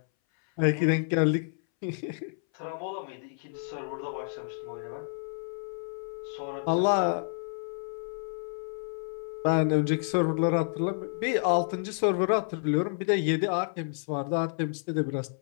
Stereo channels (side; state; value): right; silent; 58 dB below the other